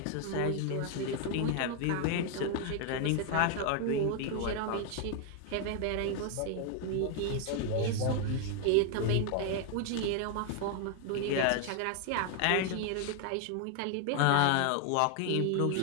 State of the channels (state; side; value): different; both; correlation 0.00